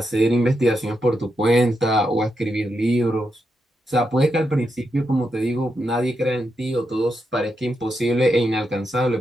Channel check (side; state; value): both; normal; correlation 0.84